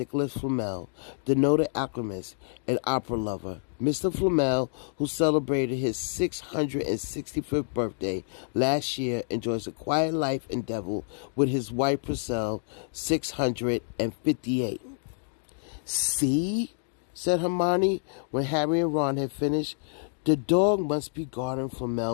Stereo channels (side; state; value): right; silent; digital silence